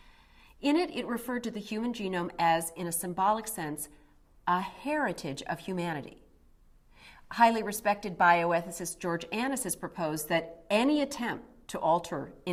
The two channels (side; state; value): both; identical; correlation 1.00